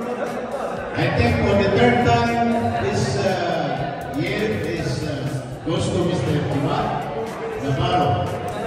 I think for the third time this year, goes to Mr. Timar Navarro.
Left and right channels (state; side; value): identical; both; correlation 1.00